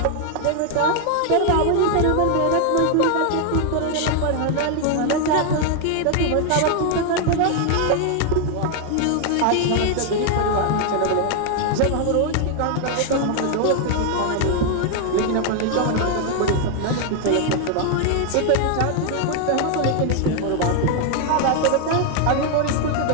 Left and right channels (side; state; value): both; different; correlation 0.00